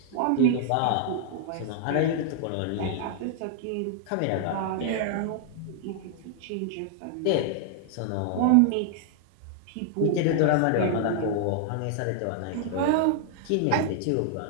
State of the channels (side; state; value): both; different; correlation 0.00